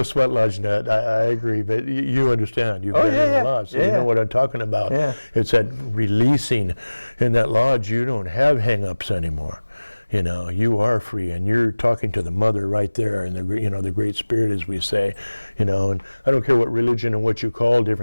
sweat lodge nut, I agree, but you understand. You've been in a lodge, so you know what I'm talking about. Yeah. It's that releasing. In that lodge, you don't have hang-ups anymore. You are free, and you're talking to the mother right there, and the great spirit, as we say, and I don't care what religion and what you call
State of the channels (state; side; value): inverted; both; correlation -1.00